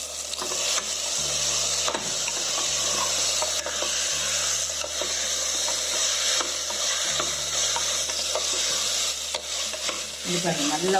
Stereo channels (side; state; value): both; identical; correlation 1.00